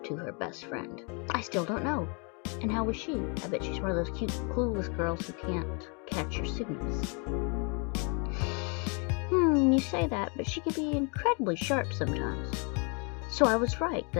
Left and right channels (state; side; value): quieter; right; 34.6 dB